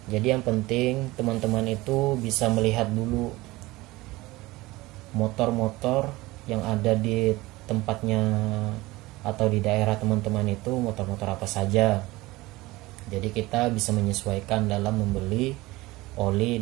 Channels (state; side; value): quieter; left; 19.9 dB